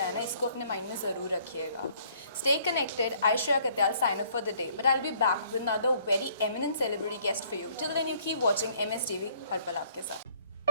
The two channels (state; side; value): inverted; both; correlation -0.61